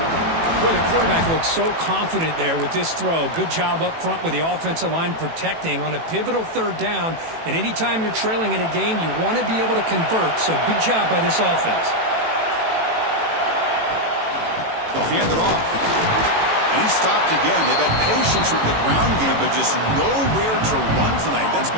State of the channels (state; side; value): late; left; 18 ms